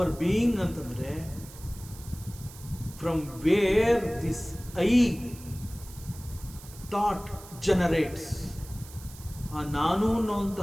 being ಅಂತಂದ್ರೆ from where this I thought generates. ಆ ನಾನು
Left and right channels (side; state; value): right; noise; hiss, 18 dB below the sound